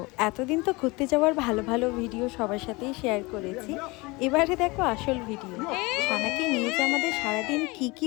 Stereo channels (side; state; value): right; quieter; 24.6 dB